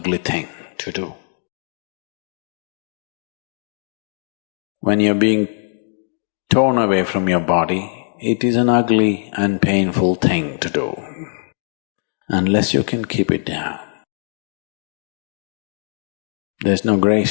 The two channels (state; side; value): silent; right; 59 dB below the other